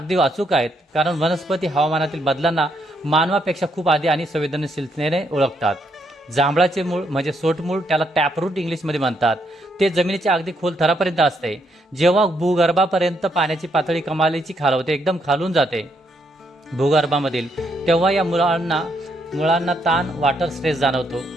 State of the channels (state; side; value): normal; both; correlation 0.75